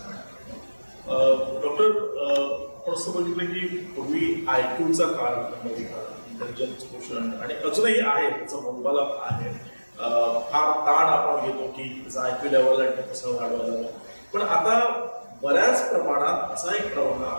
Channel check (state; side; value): inverted; both; correlation -1.00